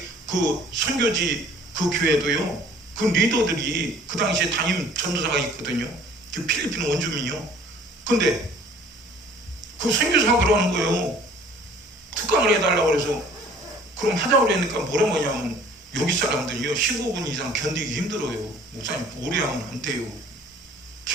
그 선교지 그 교회도요, 그 리더들이 그 당시에 담임 전도사가 있거든요. 그 필리핀 원주민이요. 근데 그 선교사가 그러는 거예요. 특강을 해달라고 그래서 그럼 하자고 그러니까 뭐라고 하냐면, 여기 사람들이요 15분 이상 견디기 힘들어요. 목사님 오래 하면 안 돼요.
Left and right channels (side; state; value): both; normal; correlation 0.53